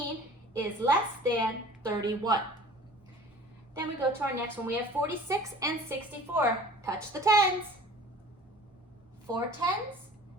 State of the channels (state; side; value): normal; both; correlation 0.45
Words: is less than 31. Then we go to our next one. We have 46 and 64. Touch the 10s. 4 10s,